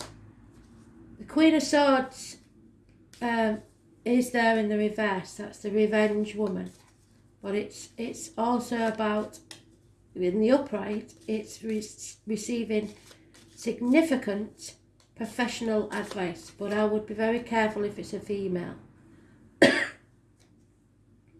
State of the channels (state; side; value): identical; both; correlation 1.00